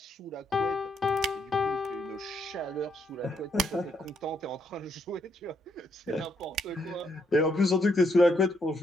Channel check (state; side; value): normal; both; correlation 0.74